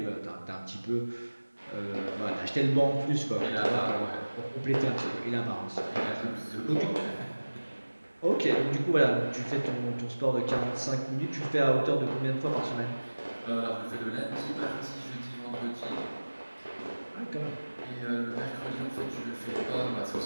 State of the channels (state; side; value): inverted; both; correlation -1.00